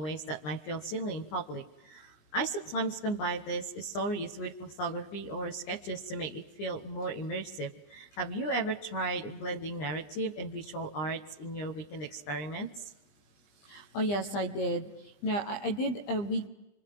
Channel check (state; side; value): late; right; 20 ms